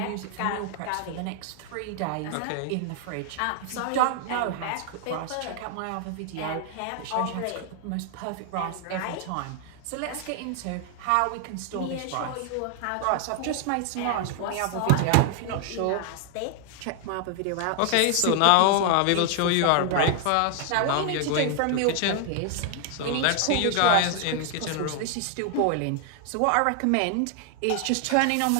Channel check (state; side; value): different; both; correlation 0.00